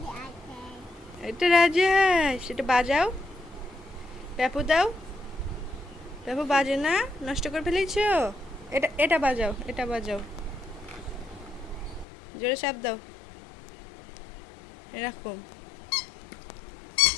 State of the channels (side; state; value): right; drops out; at 12.1 s